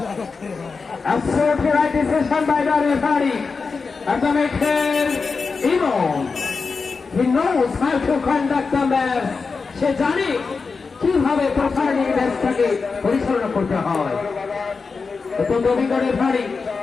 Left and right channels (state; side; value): quieter; right; 4.7 dB